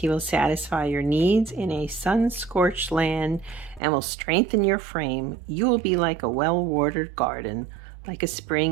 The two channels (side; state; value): left; drops out; at 3.8 s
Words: will satisfy your needs in a sun-scorched land and will strengthen your frame. You will be like a well-watered garden, like a